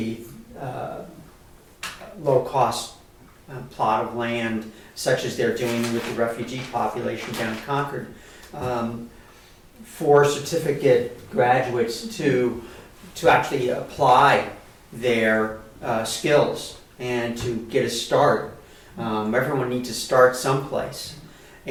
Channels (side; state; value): both; identical; correlation 1.00